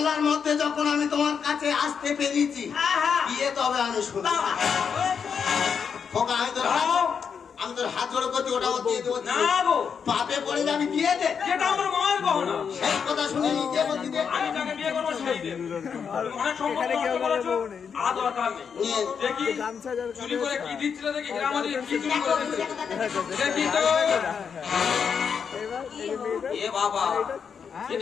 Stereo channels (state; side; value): quieter; right; 6.7 dB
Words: মধ্যে যখন আমি তোমার কাছে আসতে পেরেছি, বিয়ে তবে আমি শুনি। আমি তোর হাত জোড়ো করছি, ওটা দিয়ে দেবো। না গো, পাপে পড়ে যাবি, দিয়ে দে। যেটা আমার মায়ের গহনা, সেই কথা শুনে নিজে বলছি দে। আমি যাকে বিয়ে করবো সেই দেব। অনেক সম্পত্তি নষ্ট করেছো, আর দরকার নেই। দেখি চুরি করে কি দিচ্ছিল, দেখি হীরামণি কি চুরি করে দিচ্ছিল। দেখি তো এ বাবা, এ